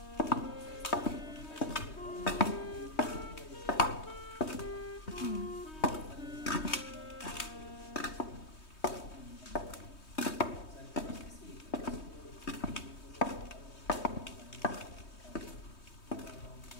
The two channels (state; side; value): late; right; 3.2 ms